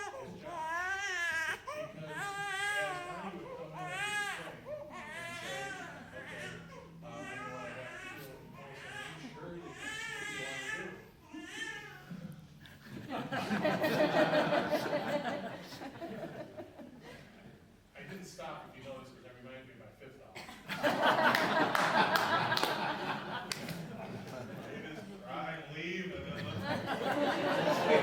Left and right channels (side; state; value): both; identical; correlation 1.00